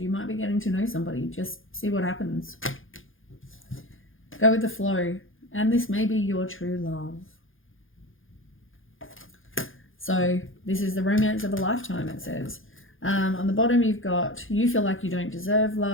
you might be getting to know somebody. Just see what happens. Go with the flow. And this may be your true love. So this is the romance of a lifetime, it says. On the bottom, you've got, you feel like you don't deserve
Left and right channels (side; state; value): right; late; 0.58 ms